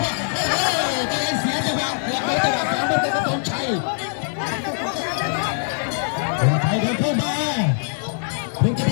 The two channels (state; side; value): silent; right; digital silence